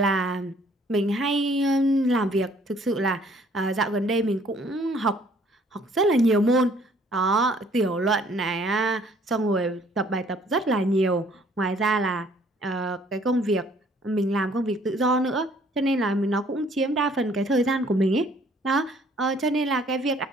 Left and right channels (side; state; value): both; normal; correlation 0.60